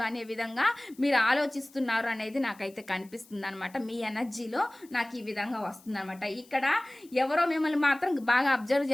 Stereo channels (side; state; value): left; noise; hiss, 26 dB below the sound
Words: అనే విధంగా మీరు ఆలోచిస్తున్నారు అనేది నాకైతే కనిపిస్తుంది అనమాట. మీ ఎనర్జీలో నాకు ఈ విధంగా వస్తుంది అనమాట. ఇక్కడ ఎవరో మిమ్మల్ని మాత్రం బాగా అబ్జర్వ్